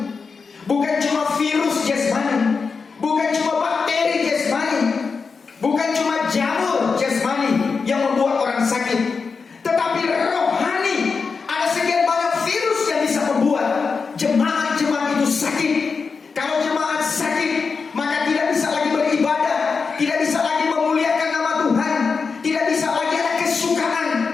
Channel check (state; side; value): quieter; right; 5.0 dB